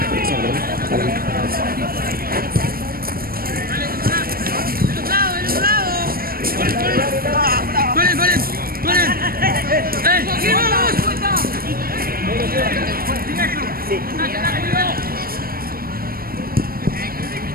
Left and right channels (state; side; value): late; left; 0.43 ms